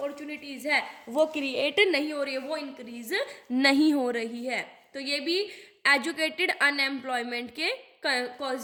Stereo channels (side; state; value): both; identical; correlation 1.00